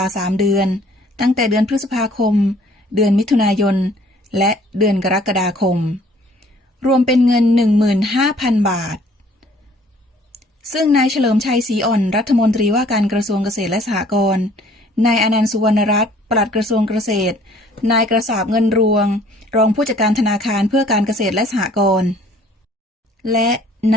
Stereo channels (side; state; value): both; normal; correlation 0.57